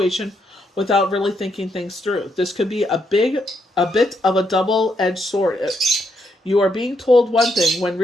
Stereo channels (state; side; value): normal; both; correlation 0.77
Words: without really thinking things through. This could be a bit of a double-edged sword. You are being told one thing when